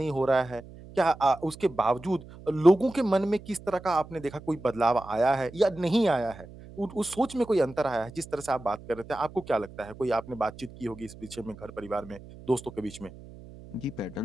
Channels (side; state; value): right; noise; hum, 18 dB below the sound